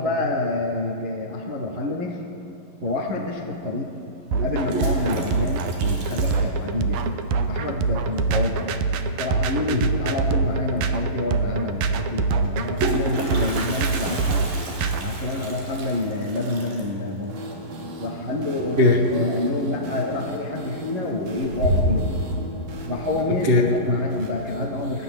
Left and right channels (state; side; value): late; left; 11 ms